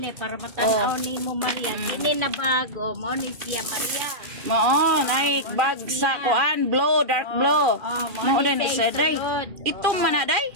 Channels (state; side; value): late; left; 2.4 ms